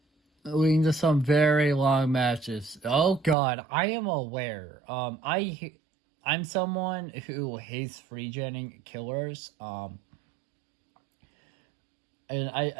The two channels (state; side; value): drops out; left; at 3.4 s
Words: leading to some very long matches. Oh god, I am aware. I'm someone who hates free genning killers. And